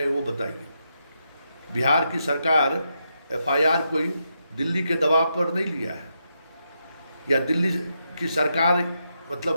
वो बताइए। बिहार की सरकार एफआईआर कोई दिल्ली के दबाव पर नहीं लिया है, या दिल्ली की सरकार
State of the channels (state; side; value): inverted; both; correlation -0.83